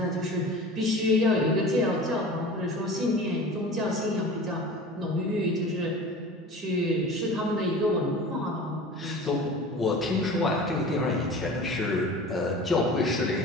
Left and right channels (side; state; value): both; normal; correlation 0.38